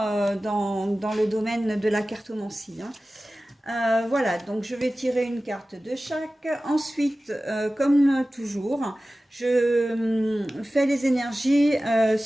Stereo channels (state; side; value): normal; both; correlation 0.96